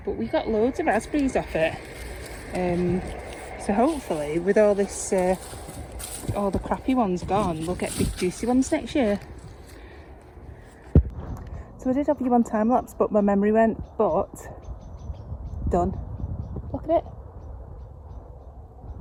But we got loads of raspberries off it. So hopefully, with all this, all the crappy ones gone, we'll get big juicy ones next year. So I did have you on time lapse, but my memory went. But done. Look at it.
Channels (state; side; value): identical; both; correlation 1.00